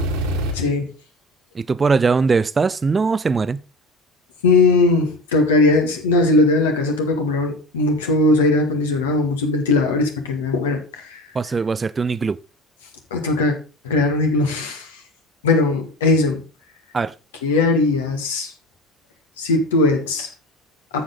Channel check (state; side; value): normal; both; correlation 0.31